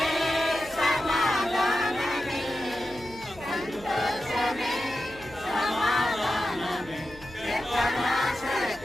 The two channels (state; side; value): noise; left; hum, 20 dB below the sound